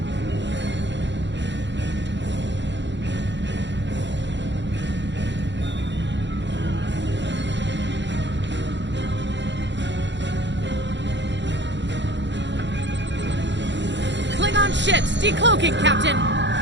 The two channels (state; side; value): late; left; 0.52 ms